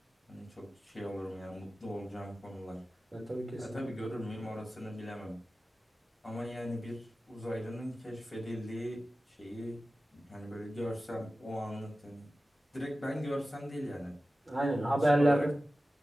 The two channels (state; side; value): normal; both; correlation 0.95